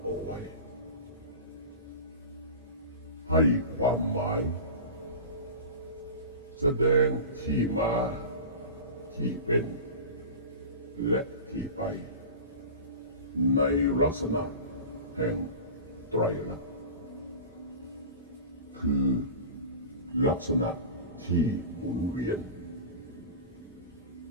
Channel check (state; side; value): inverted; both; correlation -0.32